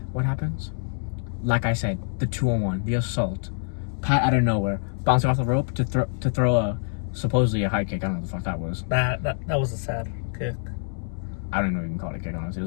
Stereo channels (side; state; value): right; silent; 61 dB below the other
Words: What happens? Like I said, the 2-on-1, the assault. Pat out of nowhere, bouncing off the rope to throw a supposedly a high kick. I don't know what the fuck that was. That was a sad kick. I don't know if you can call it a kick, honestly. It